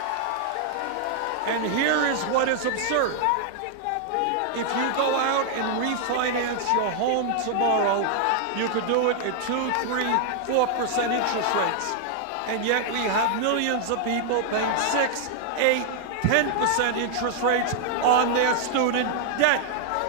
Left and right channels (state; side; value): different; both; correlation 0.00